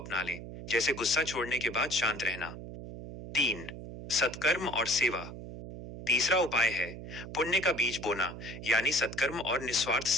लें, जैसे गुस्सा छोड़ने के बाद शांत रहना। 3. सत्कर्म और सेवा। तीसरा उपाय है पुण्य का बीज बोना, यानी सत्कर्म और निस्वार्थ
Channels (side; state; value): right; noise; hum, 11 dB below the sound